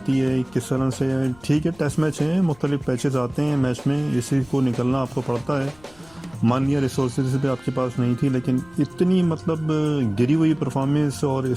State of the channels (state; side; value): noise; left; rumble, 26 dB below the sound